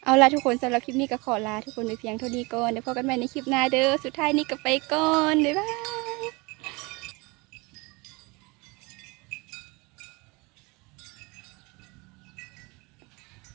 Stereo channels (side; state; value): left; quieter; 26.2 dB